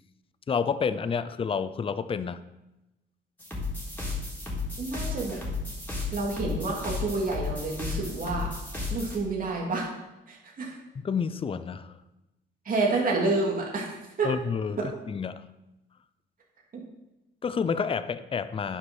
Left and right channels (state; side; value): normal; both; correlation 0.46